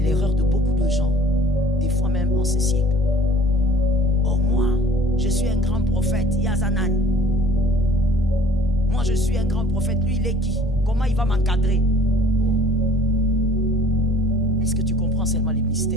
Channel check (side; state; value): both; normal; correlation 0.51